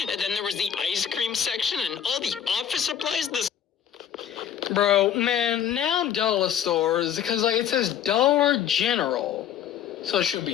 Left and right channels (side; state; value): right; quieter; 9.4 dB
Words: then there was the ice cream section and all the office supplies. Bro, man, now dollar stores, because like it says Dollar General, so it should